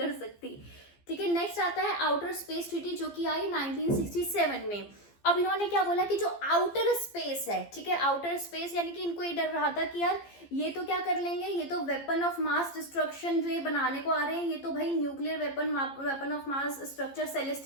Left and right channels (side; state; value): right; late; 15 ms